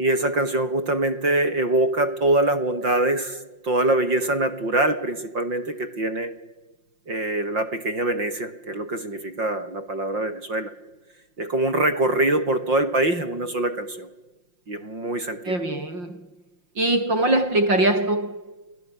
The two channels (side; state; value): left; late; 5.7 ms